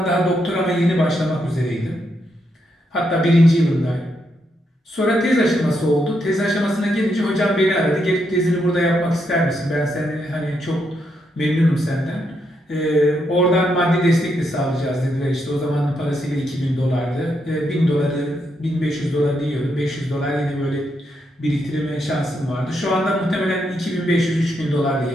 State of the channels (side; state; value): both; normal; correlation 0.79